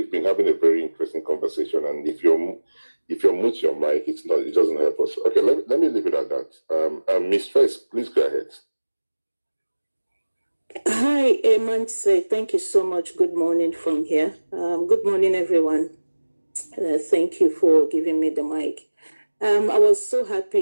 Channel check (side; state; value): both; inverted; correlation -1.00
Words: been having a very interesting conversation, and if you're mute your mic, it doesn't help us. Okay, let me leave it at that. Ms. First, please go ahead. Hi, Emanse. Thank you so much. Good morning from here. Good morning, everyone. Thank you for giving me the mic. I was so